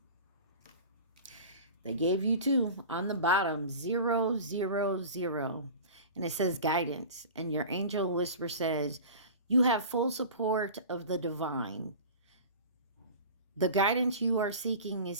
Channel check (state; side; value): inverted; both; correlation -0.36